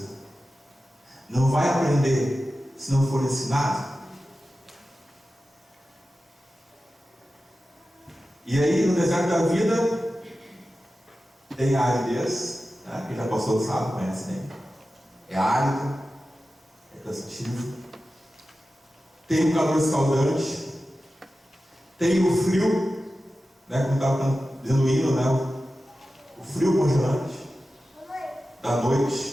Não vai aprender se não for ensinado. E aí, no deserto da vida, tem a aridez, né? Quem já passou sabe, conhece bem. É árido, é cansativo. Tem o calor escaldante, tem o frio, né? Como estava dizendo o hino, né? O frio congelante da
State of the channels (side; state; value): both; normal; correlation 0.94